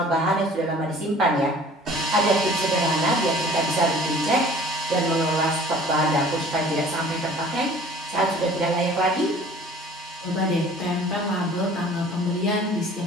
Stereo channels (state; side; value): normal; both; correlation 0.49